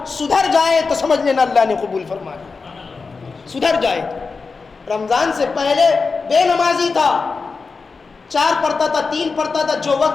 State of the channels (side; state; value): right; quieter; 4.5 dB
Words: سدھر جائے تو سمجھ لینا اللہ نے قبول فرما لیا. سدھر جائے, رمضان سے پہلے بے نمازی تھا, 4 پڑھتا تھا, 3 پڑھتا تھا, جو